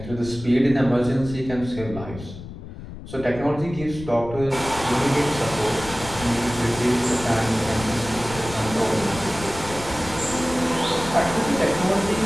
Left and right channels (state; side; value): noise; left; rumble, 13 dB below the sound